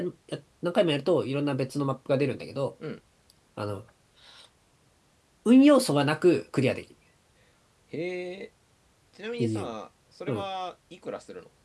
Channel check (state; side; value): identical; both; correlation 1.00